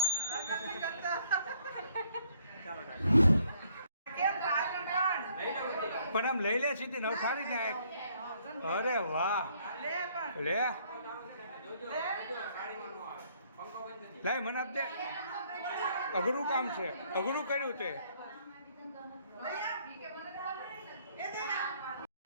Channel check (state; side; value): inverted; both; correlation -0.66